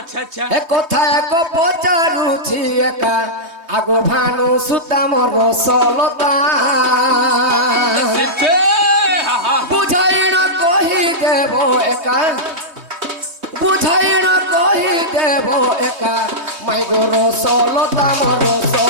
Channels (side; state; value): left; late; 3.2 ms